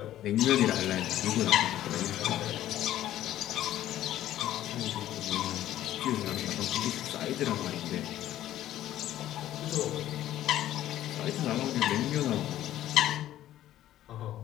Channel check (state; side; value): quieter; right; 13.0 dB